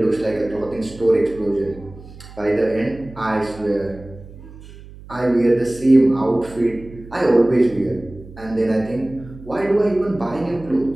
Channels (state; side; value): noise; right; hum, 18 dB below the sound